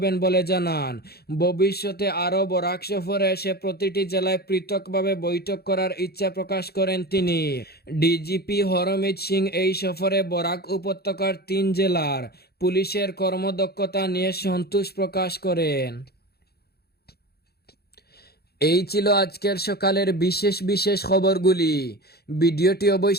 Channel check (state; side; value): late; right; 0.46 ms